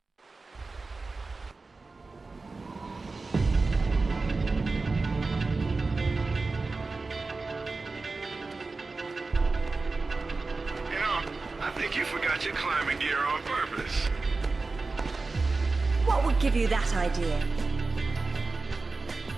I think you forgot your climbing gear on purpose. What would give you that idea?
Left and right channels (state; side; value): quieter; left; 3.8 dB